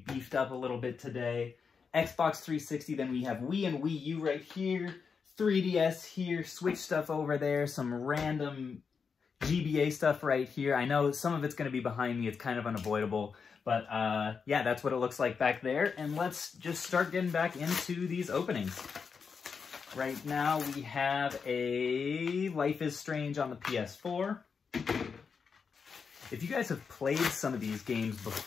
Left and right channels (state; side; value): quieter; right; 5.7 dB